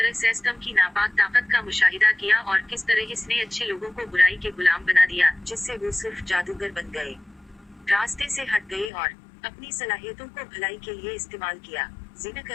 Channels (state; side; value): drops out; right; at 8.9 s